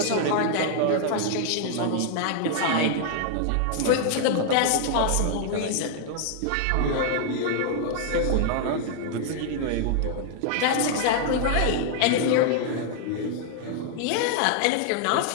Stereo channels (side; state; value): both; different; correlation 0.00